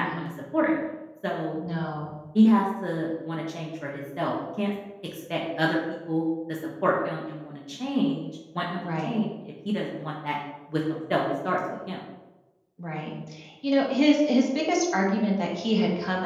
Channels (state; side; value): identical; both; correlation 1.00